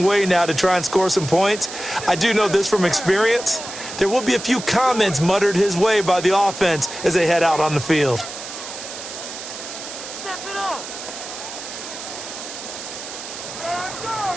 way now to try and score some points. I do know this from experience. There will be a few comments muttered his way by the offense as they head out on the field.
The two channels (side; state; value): right; noise; hiss, 10 dB below the sound